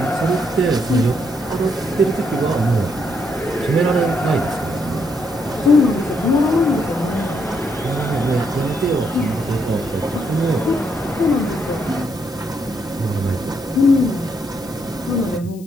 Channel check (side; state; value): left; noise; hiss, 24 dB below the sound